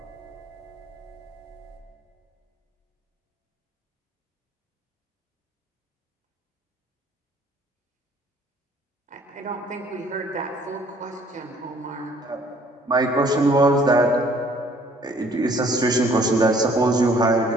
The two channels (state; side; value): normal; both; correlation 0.58